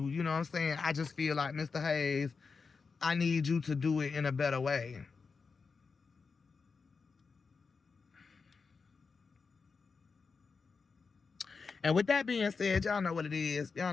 You know what I'm saying? I just feel like, Mr. Hayes, I need you to do it in a better way. And with that being said, y'all know what it is. Y'all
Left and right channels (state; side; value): quieter; right; 4.9 dB